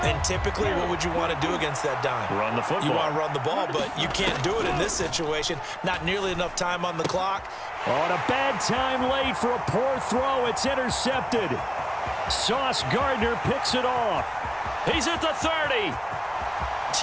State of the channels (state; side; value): identical; both; correlation 1.00